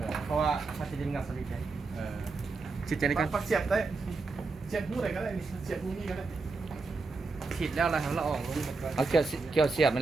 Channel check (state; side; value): quieter; left; 4.0 dB